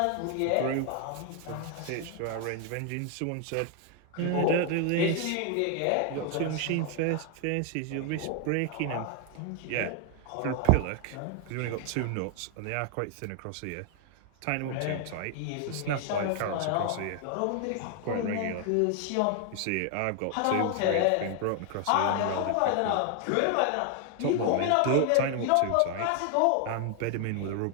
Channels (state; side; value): different; both; correlation 0.00